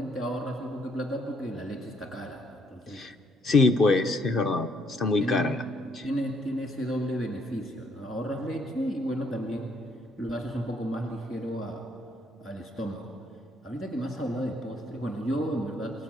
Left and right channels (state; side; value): normal; both; correlation 0.69